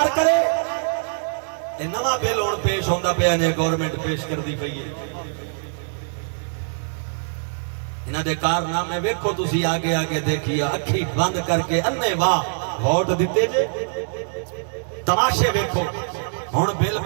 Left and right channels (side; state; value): left; silent; digital silence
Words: کرے، یہ نواں بل ہوں پیش ہوتا پیا نے گورنمنٹ پیش کر دی پئی ہے، انہاں دے کارنامے ویکھو تسی آگے آگے دیکھیے، اکھی بند کر کے انے واہ ووٹ دیتے جے، تماشے ویکھو۔ ہوں بل